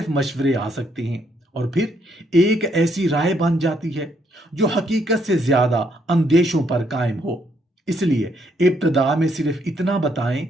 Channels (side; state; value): both; normal; correlation 0.72